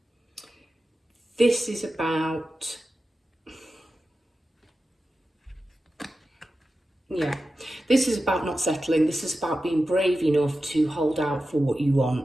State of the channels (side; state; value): both; normal; correlation 0.92